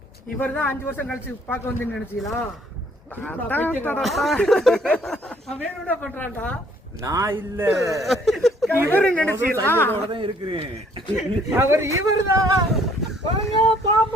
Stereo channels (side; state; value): both; normal; correlation 0.62